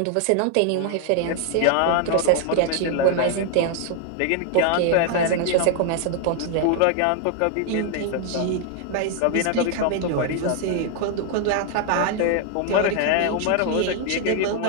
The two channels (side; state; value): both; different; correlation 0.00